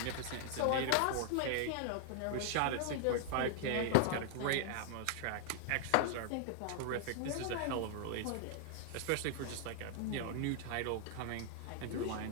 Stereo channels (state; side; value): different; both; correlation -0.01